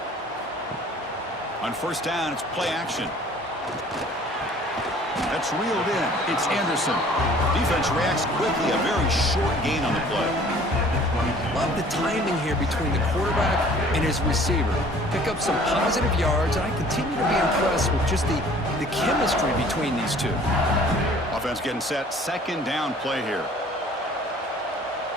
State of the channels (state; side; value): normal; both; correlation 0.52